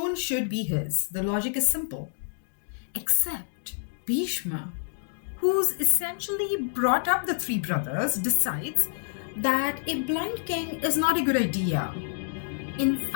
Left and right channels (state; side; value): silent; right; digital silence